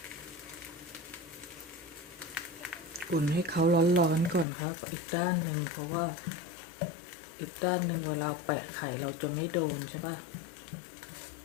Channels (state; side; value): drops out; right; at 4.5 s